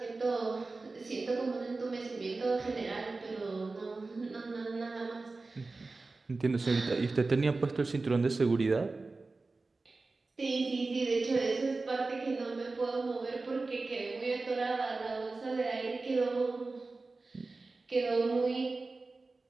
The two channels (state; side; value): quieter; left; 3.6 dB